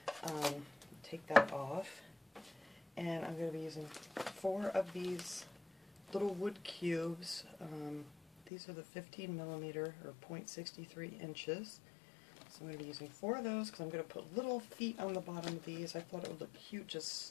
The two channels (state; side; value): drops out; right; at 8.5 s